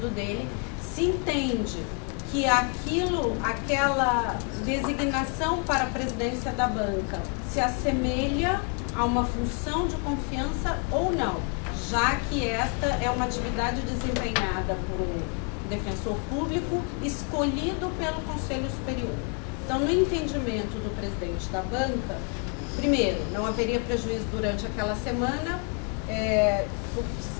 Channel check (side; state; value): right; quieter; 38.1 dB